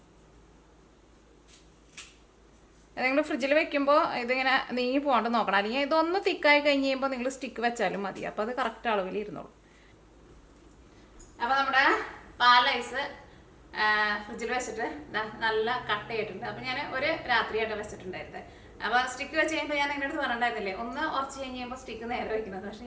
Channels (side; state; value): both; identical; correlation 1.00